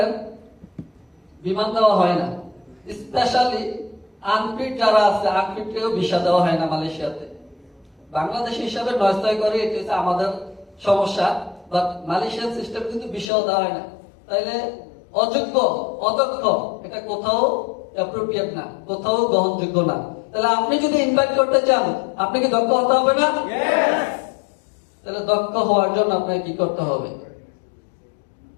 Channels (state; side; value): drops out; right; at 13.3 s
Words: বিমান দেওয়া হয় না। স্পেশালি আনফিট যারা আছে, আনফিটকেও ভিসা দেওয়া হয় না মালয়েশিয়াতে। বাংলাদেশ হিসাবে নয়স্তয় করে, এটি হচ্ছে আমাদের সমস্যা। বাট মালয়েশিয়ান সিস্টেম কিন্তু ভিসাও দেওয়া হয় না। তাইলে অযোগ্য, অদক্ষ এটা কোথাও অ্যাপ্রোপ্রিয়েট না, কোথাও গ্রহণযোগ্য না। তাহলে আপনি যদি ইনভাইট করতে চান, আপনি কি দক্ষ হতে হবে না? তাহলে দক্ষ হওয়ার জন্য আপনাকে কি করতে হবে?